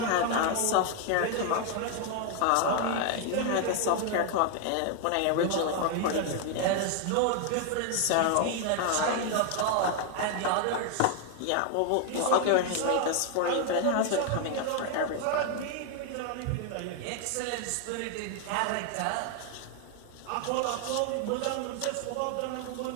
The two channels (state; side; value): different; both; correlation 0.00